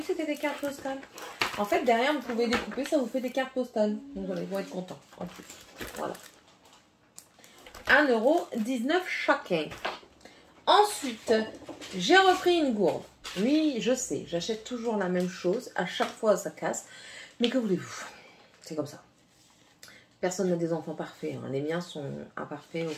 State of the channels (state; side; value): identical; both; correlation 1.00